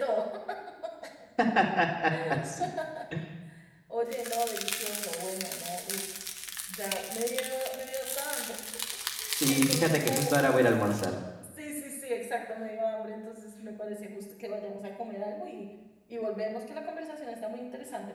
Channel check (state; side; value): identical; both; correlation 1.00